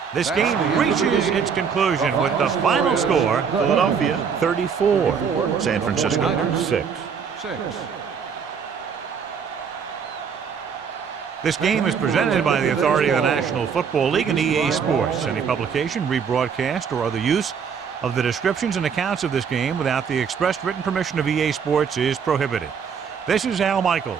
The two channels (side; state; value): left; quieter; 6.6 dB